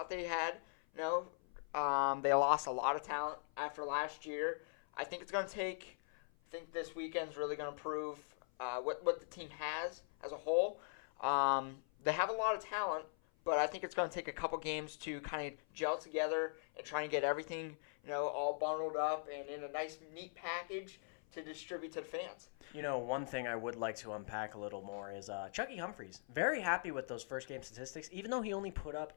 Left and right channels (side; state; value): right; silent; 50 dB below the other